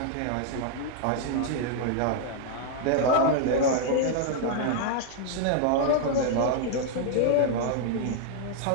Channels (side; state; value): both; different; correlation -0.01